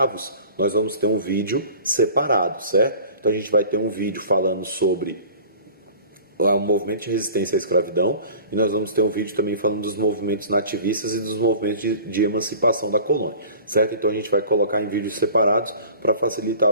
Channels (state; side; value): inverted; both; correlation -0.44